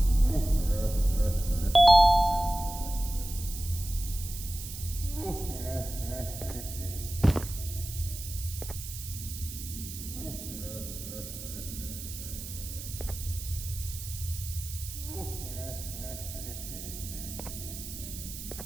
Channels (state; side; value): noise; right; hiss, 10 dB below the sound